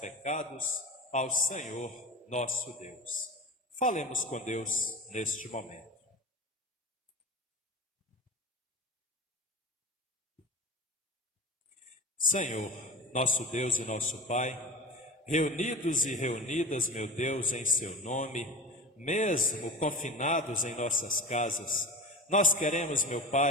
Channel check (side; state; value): both; normal; correlation 0.30